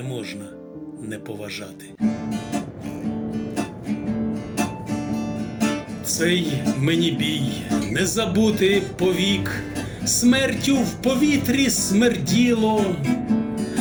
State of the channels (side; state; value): both; identical; correlation 1.00